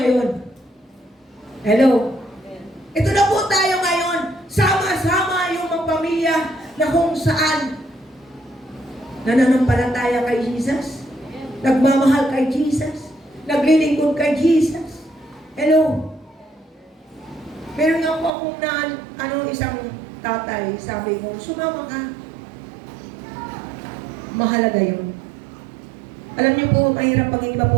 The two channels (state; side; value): drops out; left; at 18.3 s